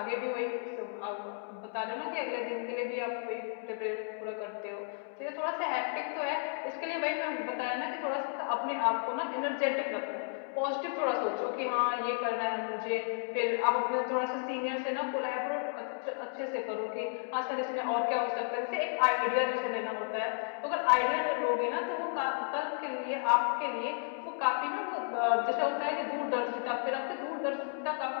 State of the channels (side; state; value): right; silent; 56 dB below the other